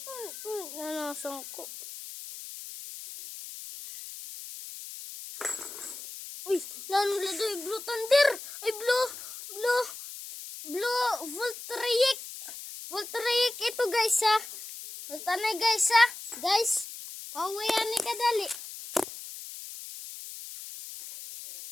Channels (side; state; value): left; noise; hiss, 11 dB below the sound